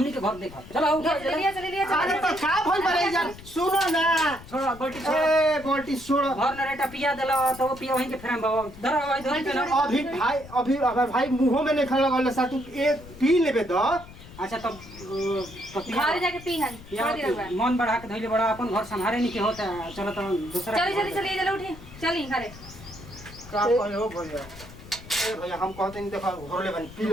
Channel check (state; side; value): noise; left; rumble, 17 dB below the sound